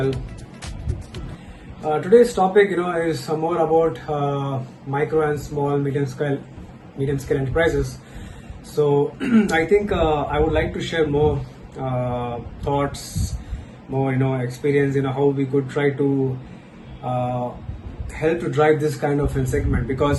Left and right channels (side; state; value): both; identical; correlation 1.00